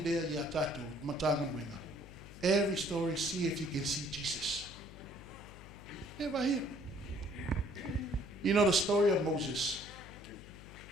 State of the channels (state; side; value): noise; left; hum, 16 dB below the sound